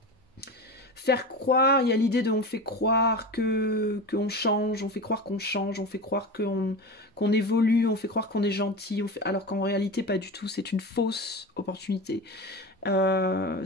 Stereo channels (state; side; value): normal; both; correlation 0.27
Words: faire croire, il y a l'idée de on fait croire qu'on change, on fait croire qu'on change, on fait croire qu'on évolue, on fait croire qu'on est gentil, alors qu'en réalité pas du tout, c'est une fausse opportunité.